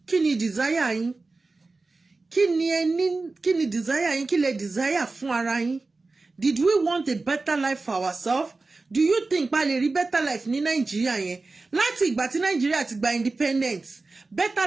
kí ni desire yín kí ni desire yín kí lè desire fún ara yín did we want a better life for ourselves do you think pa lè rí better life ní Nàìjíríà yẹn láti ìgbà tí Nàìjíríà ti gba independence better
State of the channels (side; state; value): left; quieter; 3.6 dB